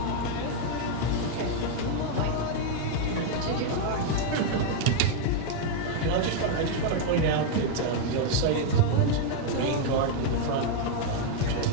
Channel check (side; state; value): both; different; correlation 0.00